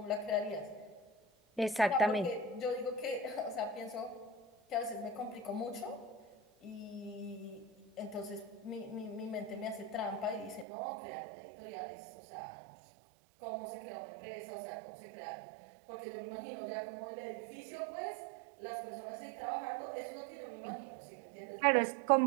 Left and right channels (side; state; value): left; drops out; at 10.7 s